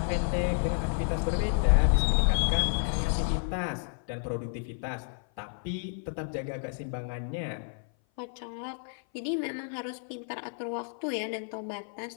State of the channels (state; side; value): silent; right; 55 dB below the other